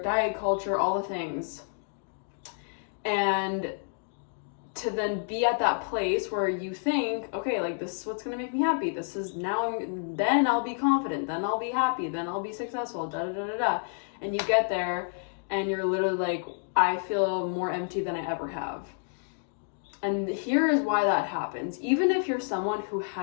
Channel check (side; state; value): right; silent; digital silence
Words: diet culture, all the things, and to then be at that place where you think, okay, like, this is what's going to make me happy. This is then I'll be confident, then I'll be happy, then I'll be successful, da da da da da. And you get there and you're literally like, I feel more empty than I ever have. And here is why that happens. Even if you're someone who